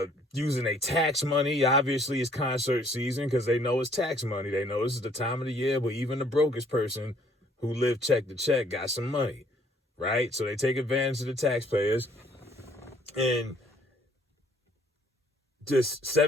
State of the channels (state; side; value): normal; both; correlation 0.61